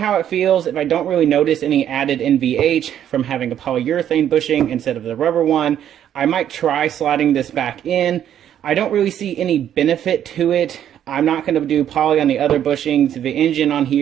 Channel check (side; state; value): left; quieter; 10.2 dB